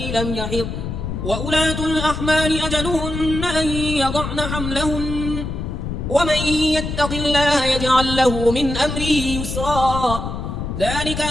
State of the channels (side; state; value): left; noise; rumble, 5 dB below the sound